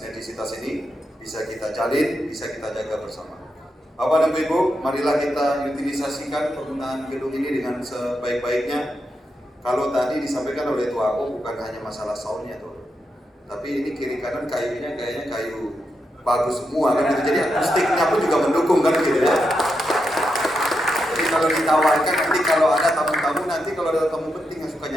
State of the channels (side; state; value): both; normal; correlation 0.85